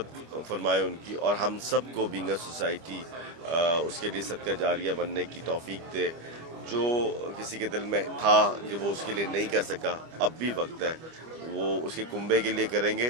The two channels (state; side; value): late; left; 25 ms